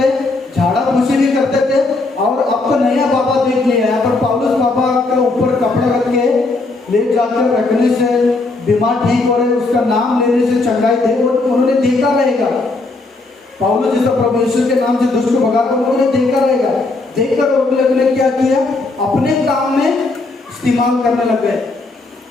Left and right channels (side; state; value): right; quieter; 3.4 dB